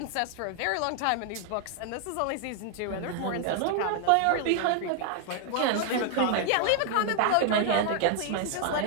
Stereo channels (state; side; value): different; both; correlation 0.00